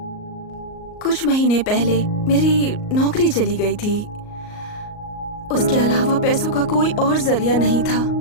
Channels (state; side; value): late; right; 38 ms